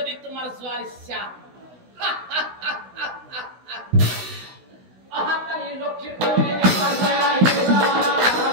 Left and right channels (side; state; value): left; late; 16 ms